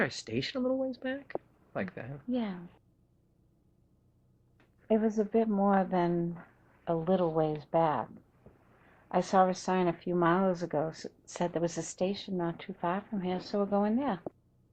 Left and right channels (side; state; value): both; identical; correlation 1.00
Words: a station a little ways back? Like that? Yeah. It was a bit more than a little ways back. I saw a sign a few miles ago said there was a station not too far from here, so we're going there.